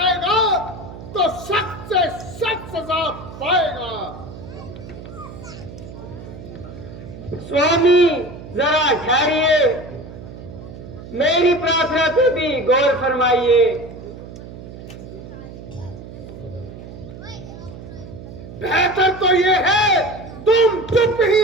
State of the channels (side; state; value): right; noise; hum, 14 dB below the sound